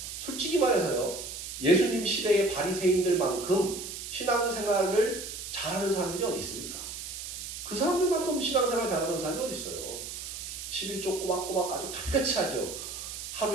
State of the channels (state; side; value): noise; right; hiss, 8 dB below the sound